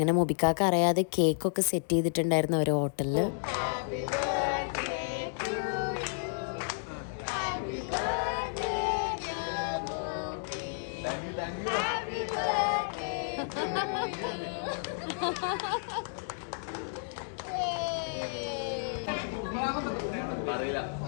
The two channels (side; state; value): right; silent; digital silence